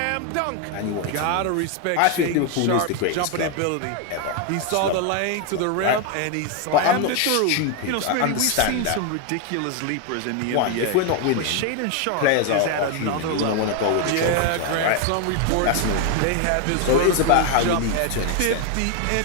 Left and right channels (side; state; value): both; different; correlation 0.01